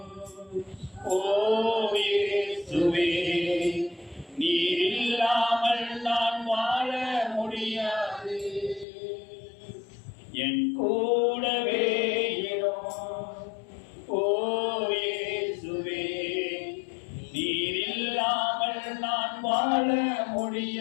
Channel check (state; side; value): drops out; right; at 8.8 s